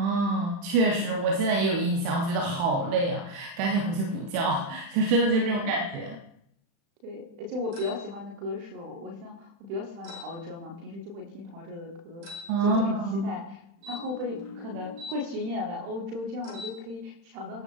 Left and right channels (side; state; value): left; late; 35 ms